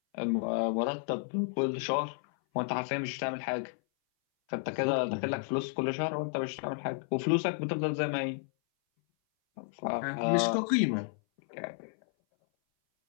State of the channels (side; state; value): right; silent; 56 dB below the other